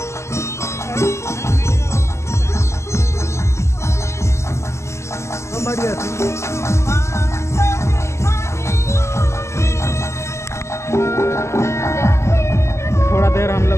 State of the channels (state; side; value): late; right; 0.13 ms